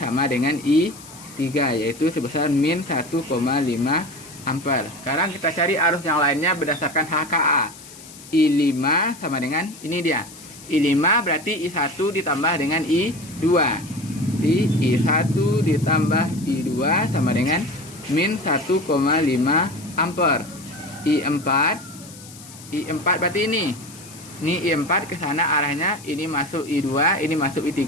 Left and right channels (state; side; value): noise; left; hiss, 18 dB below the sound